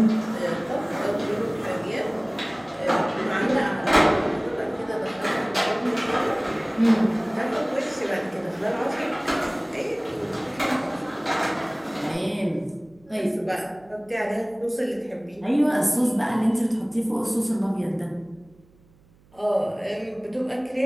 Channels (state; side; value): noise; right; hum, 30 dB below the sound